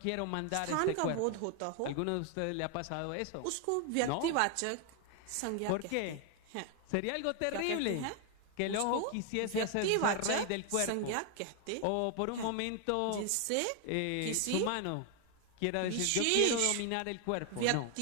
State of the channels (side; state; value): both; different; correlation 0.00